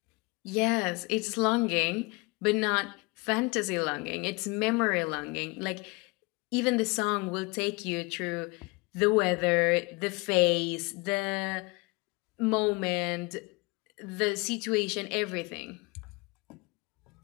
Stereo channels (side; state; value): right; quieter; 26.6 dB